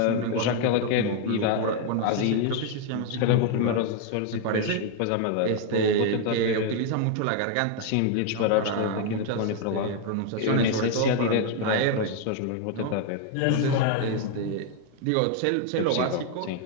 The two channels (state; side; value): different; both; correlation 0.00